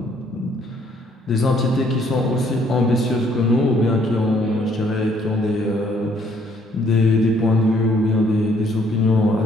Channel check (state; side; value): normal; both; correlation 0.65